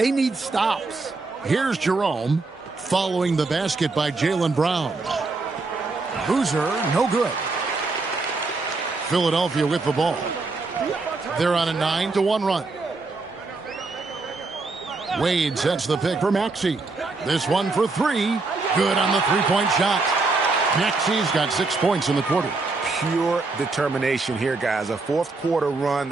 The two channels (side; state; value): left; quieter; 3.7 dB